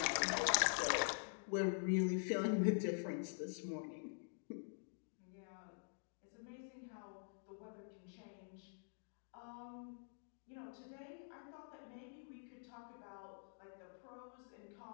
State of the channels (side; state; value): right; silent; digital silence